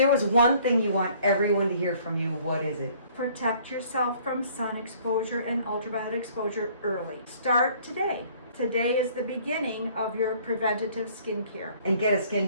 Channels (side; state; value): both; inverted; correlation -0.57